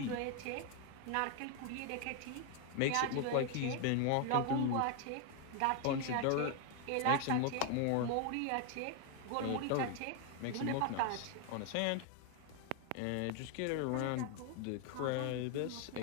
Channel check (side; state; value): both; different; correlation 0.01